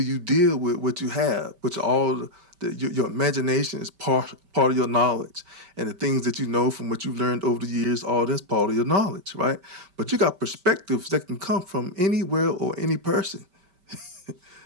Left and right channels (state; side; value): late; left; 5.2 ms